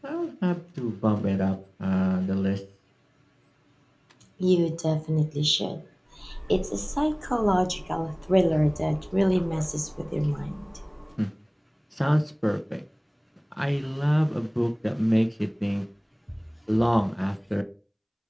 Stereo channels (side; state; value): both; identical; correlation 1.00